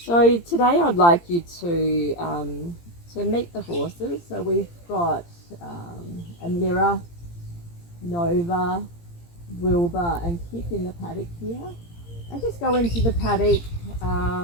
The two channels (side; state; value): right; late; 17 ms